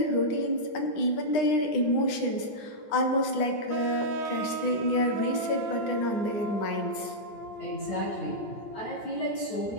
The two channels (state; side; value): late; right; 9.8 ms